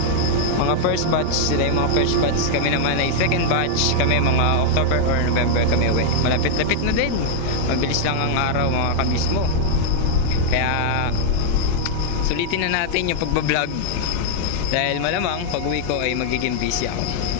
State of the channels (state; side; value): different; both; correlation 0.00